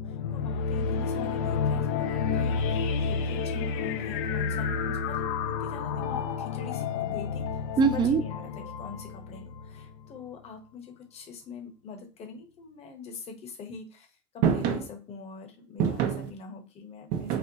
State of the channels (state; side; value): normal; both; correlation -0.03